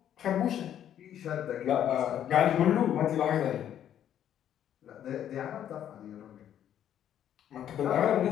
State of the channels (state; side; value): quieter; right; 10.3 dB